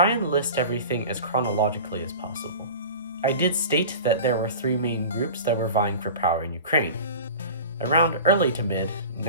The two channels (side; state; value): both; inverted; correlation -0.36